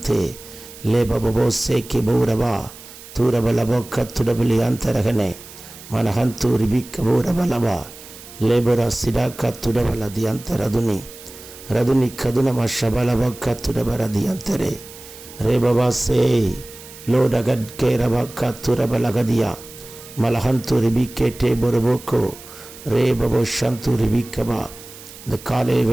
ले बाबो से के बौरबा तूरबलबो कत्तुडबली अंतरगने मनहंतु रिबिकबोरबलबा लेबरा सिडा कत्तुडबलदि अंतरदुनि रदुनि कदुनम शबलबो कत्तुडबरदि अंतरे रे बाबा से लोडगड के रबा कत्तुरबलगदिया मलहंतु रिबिकेटे बोरबोको रे बाबो शंतु रिबिकबा. இந்த காலை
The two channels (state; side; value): noise; right; hiss, 17 dB below the sound